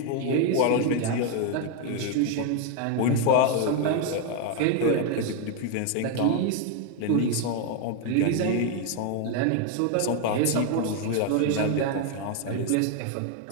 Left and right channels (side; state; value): both; different; correlation 0.01